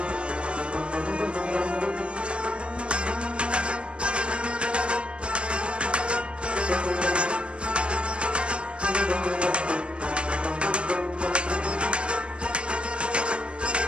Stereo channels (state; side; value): late; left; 0.058 ms